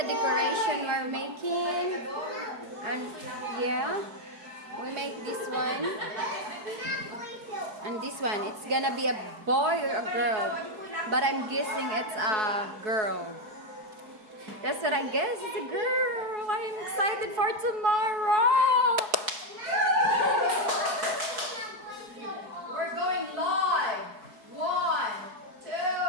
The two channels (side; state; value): left; late; 4.6 ms